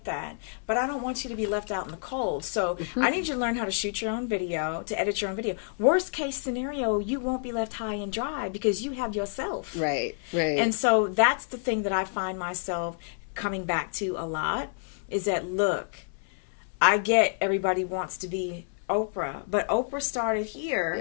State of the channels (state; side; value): silent; right; 59 dB below the other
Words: that. But I don't want you to be left out in the cold. So I need you to learn how to shoot your own video, to edit your own video. Worst case scenario, you won't be left high and dry because you have yourself. Right. And so that's the thing that I find myself coming back to a lot, is that, look, I get everybody wants to be Oprah, but Oprah started